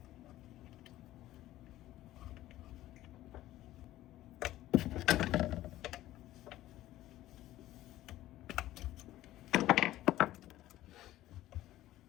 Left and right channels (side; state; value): right; quieter; 14.9 dB